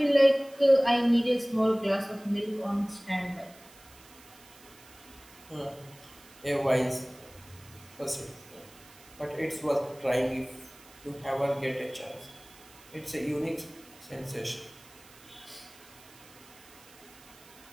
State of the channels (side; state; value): right; noise; hiss, 22 dB below the sound